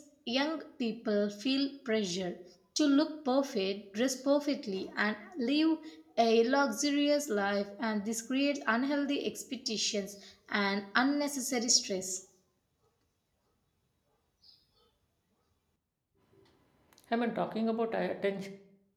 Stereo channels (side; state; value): both; identical; correlation 1.00